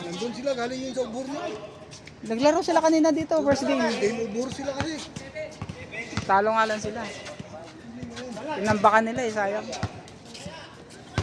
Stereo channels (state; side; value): identical; both; correlation 1.00